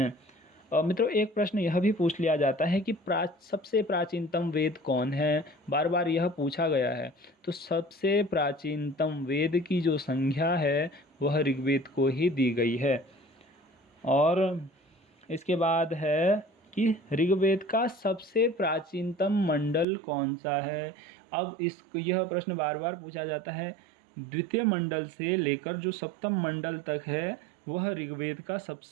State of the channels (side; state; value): left; drops out; at 19.9 s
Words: मित्रों एक प्रश्न यह भी पूछ लिया जाता है कि सबसे प्राचीनतम वेद कौन है? बार बार यह पूछा गया है। तो सबसे प्राचीनतम वेद की जो संज्ञा है वह ऋग्वेद को ही दी गई है। और इसके बाद है कि ऋग्वेद का सबसे प्राचीनतम मंडल कौन सा है? अब यह प्रश्न बार बार पूछा जाता है। द्वितीय मंडल से लेकर जो सप्तम मंडल तक है वह ऋग्वेद का